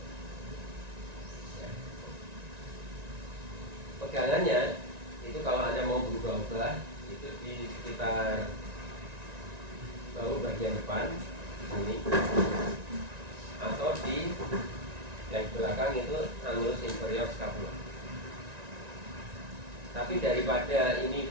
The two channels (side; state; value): left; late; 1.9 ms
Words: Pegangannya itu kalau Anda mau berubah-ubah itu di sekitar bahu bagian depan di sini, atau di yang belakang itu annulus inferior scapula. Tapi daripada ini